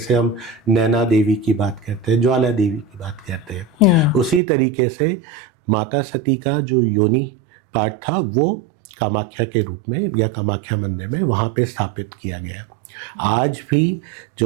हम नैना देवी की बात करते हैं, ज्वाला देवी की बात करते हैं, उसी तरीके से माता सती का जो योनि पार्ट था वो कामाख्या के रूप में या कामाख्या मंदिर में वहाँ पे स्थापित किया गया। आज भी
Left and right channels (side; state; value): left; drops out; at 4.4 s